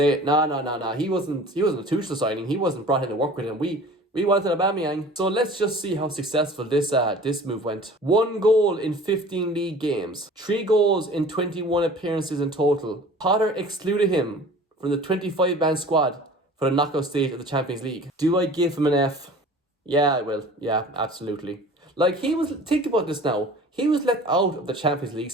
nah, he wasn't a Tuchel signing. He wasn't brought in to work with him. We wanted Aubameyang. So let's just see how successful this move went. 1 goal in 15 league games. 3 goals in 21 appearances in total. Potter excluded him from the 25-man squad for the knockout stage of the Champions League. Do I give him an F? Yeah, I will. Yeah, absolutely. Like, think about this now. He was let out of the Champions League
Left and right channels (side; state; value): both; normal; correlation 0.44